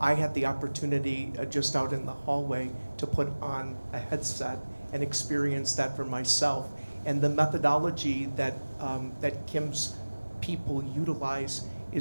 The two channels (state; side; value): inverted; both; correlation -1.00